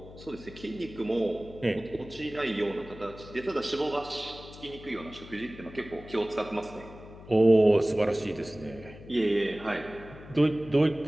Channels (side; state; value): left; noise; hum, 17 dB below the sound